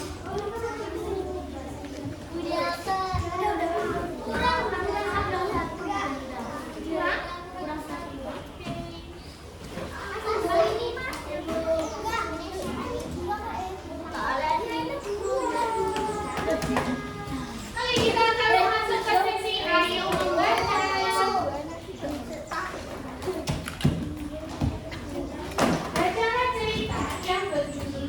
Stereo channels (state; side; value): identical; both; correlation 1.00